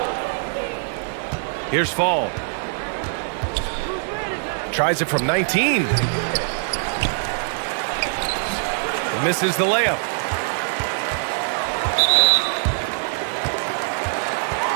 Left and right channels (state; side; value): silent; left; digital silence